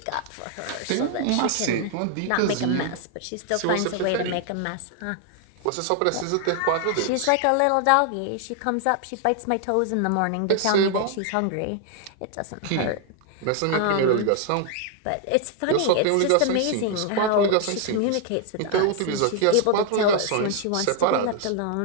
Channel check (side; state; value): both; different; correlation 0.00